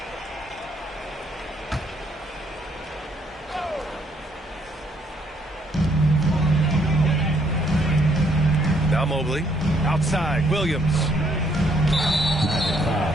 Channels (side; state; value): both; normal; correlation 0.69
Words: Now Mobley. Outside, Williams.